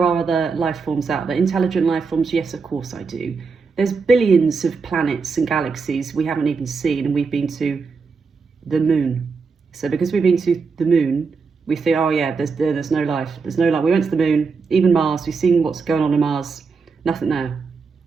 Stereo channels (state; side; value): quieter; left; 4.9 dB